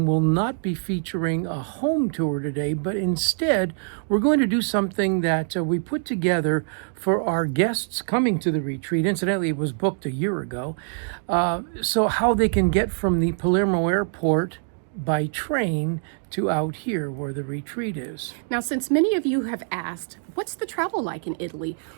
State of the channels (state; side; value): silent; left; digital silence